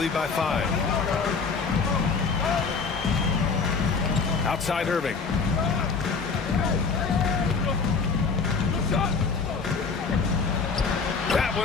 by 5. Outside Irving. That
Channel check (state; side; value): quieter; right; 5.0 dB